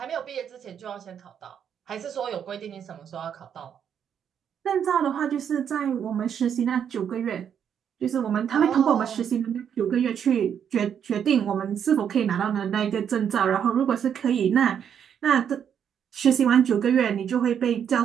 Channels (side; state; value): left; quieter; 8.3 dB